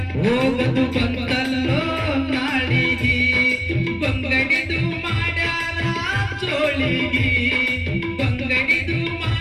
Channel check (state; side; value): identical; both; correlation 1.00